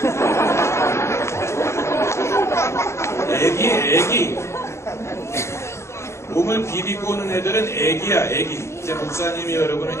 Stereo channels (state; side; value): late; right; 0.13 ms